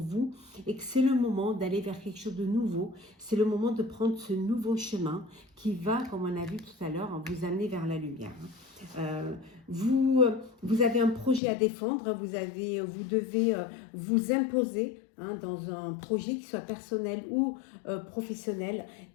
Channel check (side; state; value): right; drops out; at 11.4 s